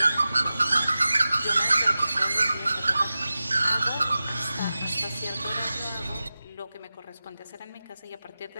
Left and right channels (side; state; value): both; inverted; correlation -0.95